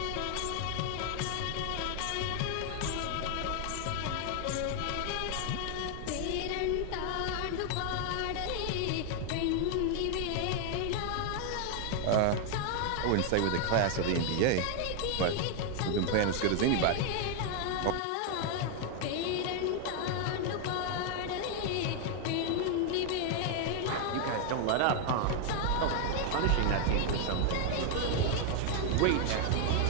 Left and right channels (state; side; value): different; both; correlation 0.00